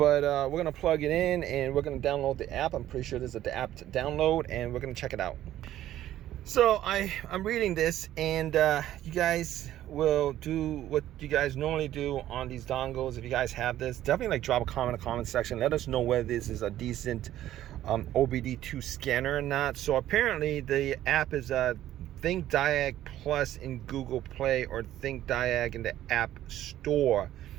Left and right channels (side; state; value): left; quieter; 13.0 dB